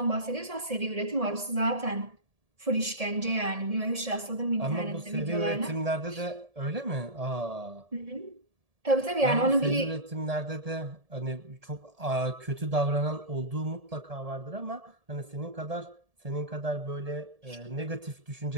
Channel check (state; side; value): late; left; 1.7 ms